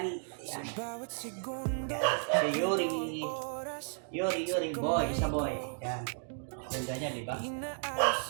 Yan. Si Yori. Yori boy. Isa boy. Yan. Ganda niya, di ba?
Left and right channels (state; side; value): silent; left; digital silence